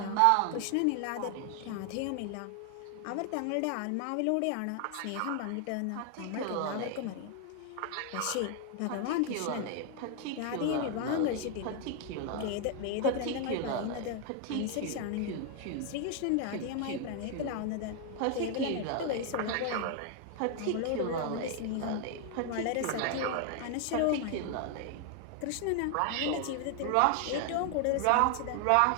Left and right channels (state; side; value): different; both; correlation 0.00